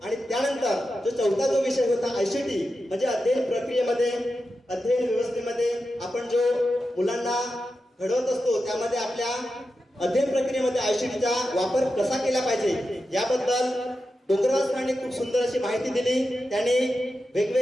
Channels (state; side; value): normal; both; correlation 0.90